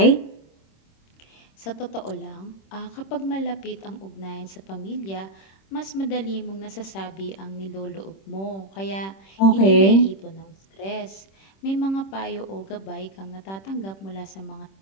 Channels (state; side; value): late; right; 26 ms